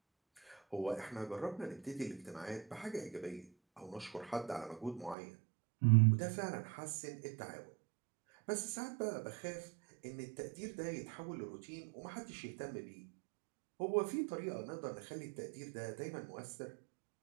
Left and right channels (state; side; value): drops out; left; at 5.2 s